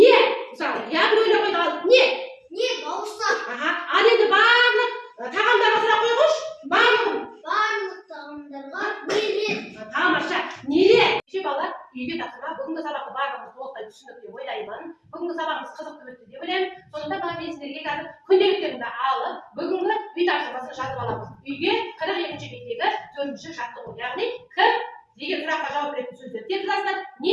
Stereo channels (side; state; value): both; identical; correlation 1.00